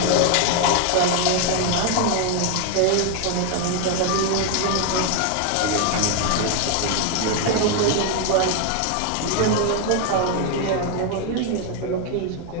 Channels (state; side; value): different; both; correlation 0.01